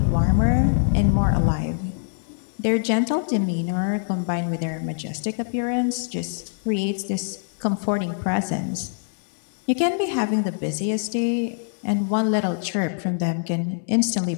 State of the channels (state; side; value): silent; right; 63 dB below the other